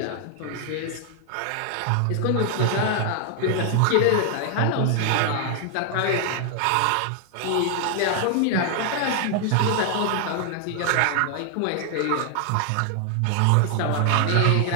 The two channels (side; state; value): both; different; correlation 0.00